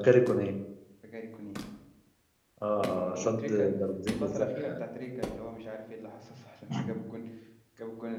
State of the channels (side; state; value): both; identical; correlation 1.00